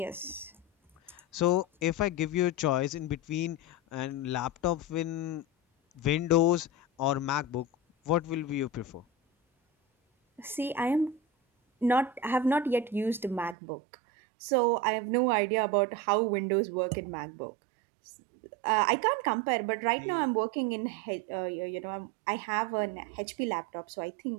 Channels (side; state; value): left; drops out; at 13.6 s